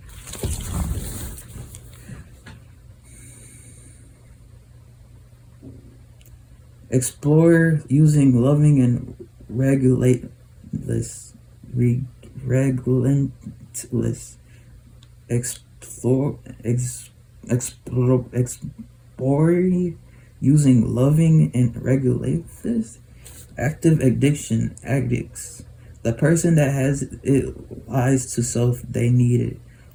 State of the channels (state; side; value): identical; both; correlation 1.00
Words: Explore using loving and relentless. Explore using loving and regulates. Active addiction addicts. The person that has it lies to self, they need it.